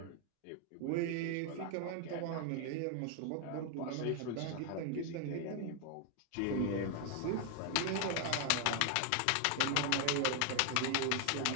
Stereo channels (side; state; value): both; different; correlation 0.00